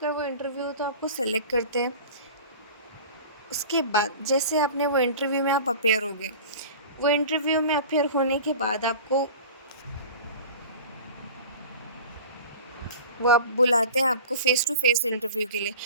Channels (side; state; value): both; inverted; correlation -0.38